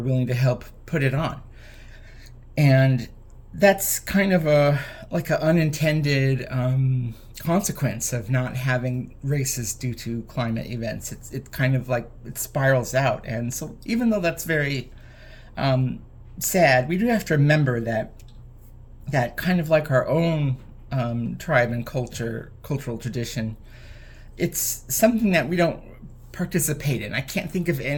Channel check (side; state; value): both; identical; correlation 1.00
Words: to help put it on. And that's kind of an unintended consequence of not having races due to climate events. It's kind of like it spirals out. And so even though that's very sad, we do have to remember that kind of like our own tribe and cultural tradition, it's something that we don't participate in. I can't think of